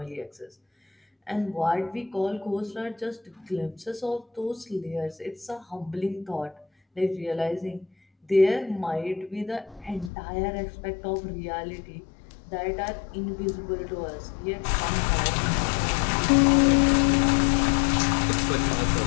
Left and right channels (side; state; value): right; drops out; at 10.1 s